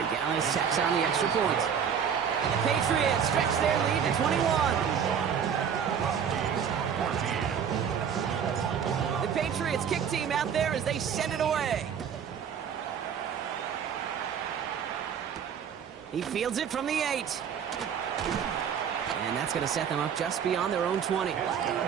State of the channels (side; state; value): left; quieter; 7.7 dB